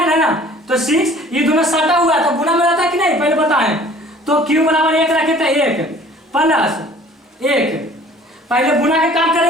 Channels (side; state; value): both; normal; correlation 0.50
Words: ना, तो 6 ये दोनों सटा हुआ तो गुना में रहता है कि नहीं, पहले बताएं। तो Q बराबर 1 रखे थे, 1 + 1, पहले गुना के काम